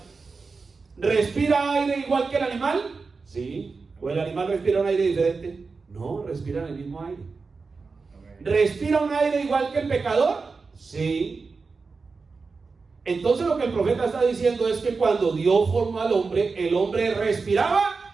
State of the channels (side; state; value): left; quieter; 4.5 dB